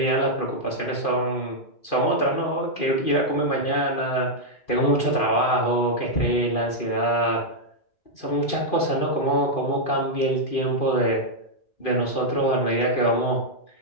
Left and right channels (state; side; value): late; right; 2.5 ms